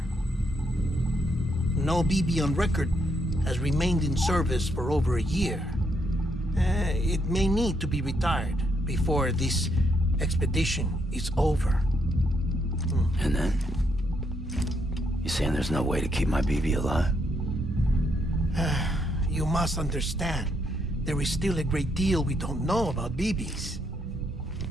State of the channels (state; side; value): normal; both; correlation 0.76